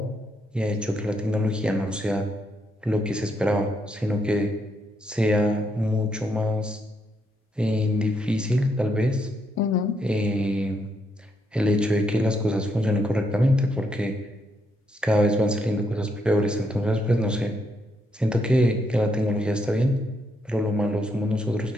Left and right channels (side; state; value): both; normal; correlation 0.77